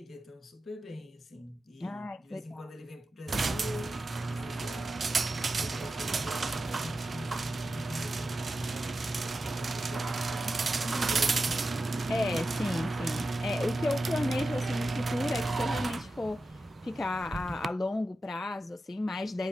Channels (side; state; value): both; normal; correlation 0.91